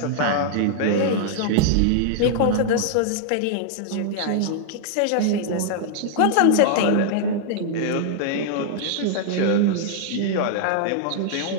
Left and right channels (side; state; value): both; different; correlation -0.01